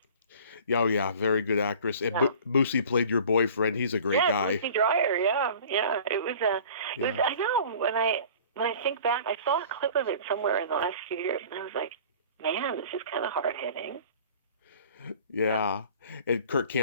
oh yeah, very good actress. And Moosey played your boyfriend. He's a great guy. Moosey Dryer, yeah. It was I know, when I think back, I saw a clip of it somewhere in the last few years, and I was like, man, this is kind of hard-hitting. Yeah. And Kirk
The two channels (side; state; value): both; inverted; correlation -0.45